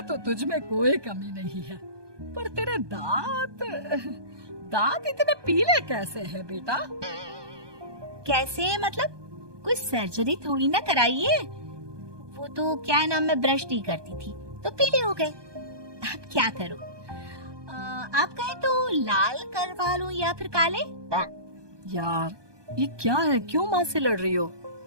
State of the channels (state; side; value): late; left; 1.2 ms